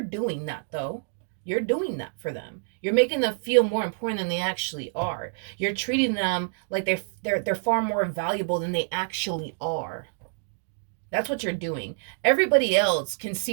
doing that though. You're doing that for them. You're making them feel more important than they actually are. You're treating them like they're far more valuable than they actually are. That's what you're doing. Everybody else can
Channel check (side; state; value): left; silent; digital silence